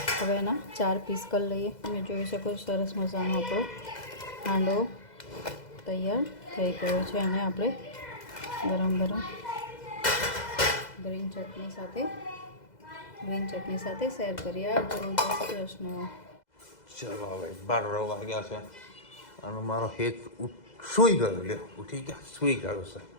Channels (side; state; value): right; late; 2.0 ms